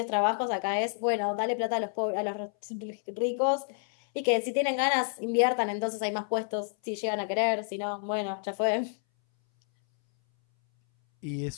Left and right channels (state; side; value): silent; right; 58 dB below the other